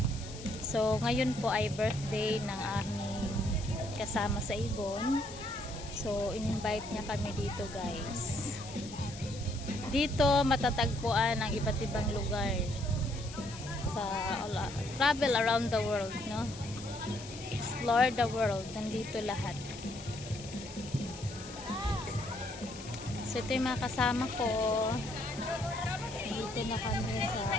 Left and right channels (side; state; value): left; noise; hiss, 15 dB below the sound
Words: So ngayon po ay birthday ng aming kasama sa Ibon. So in-invite niya kami dito guys. Dito matatagpuan ang iba't ibang lugar sa travel around the world, no? Explore the world, nandito lahat. So ito yung mga kasama ko. Dito na kami sa